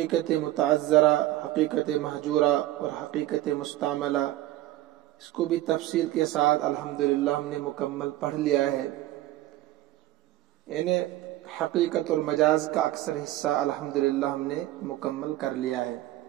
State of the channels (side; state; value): left; quieter; 15.4 dB